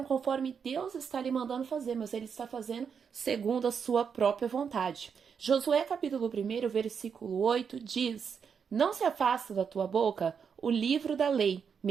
conforme Deus está lhe mandando fazer, mas ele está fazendo segundo a sua própria vontade. Josué capítulo 1, versículo 8 diz: Não se afasta da tua boca o livro da lei,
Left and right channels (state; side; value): quieter; left; 6.7 dB